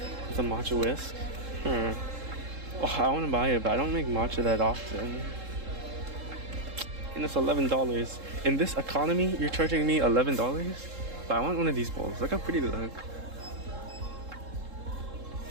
the matcha whisk. Oh, I want to buy it, but I don't make matcha that often. And it's $11. In this economy, you're charging me $11? But I want one of these bowls. Look how pretty they look.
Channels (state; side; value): late; left; 3.7 ms